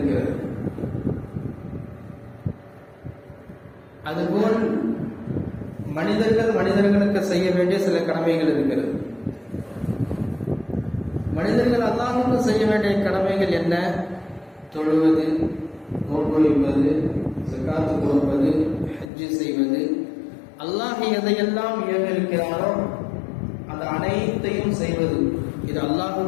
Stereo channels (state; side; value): drops out; right; at 19.1 s